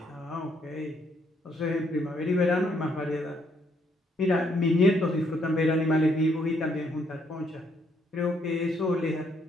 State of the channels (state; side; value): normal; both; correlation 0.71